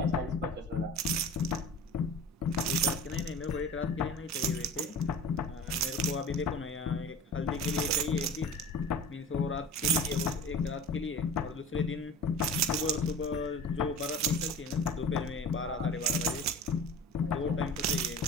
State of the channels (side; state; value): both; normal; correlation 0.38